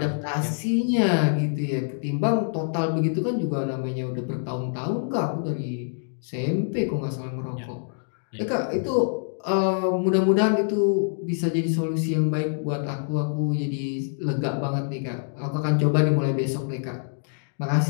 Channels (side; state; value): right; silent; digital silence